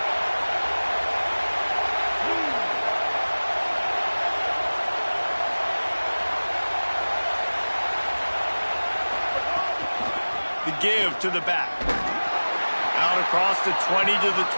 The give to the back. Out across the 20 to the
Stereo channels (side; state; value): both; inverted; correlation -1.00